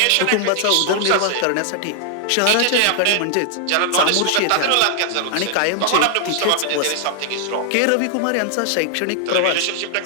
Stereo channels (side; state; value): both; different; correlation 0.00